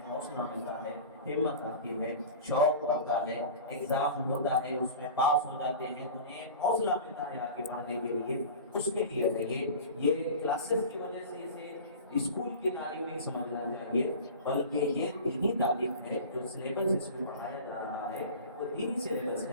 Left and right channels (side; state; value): both; inverted; correlation -0.35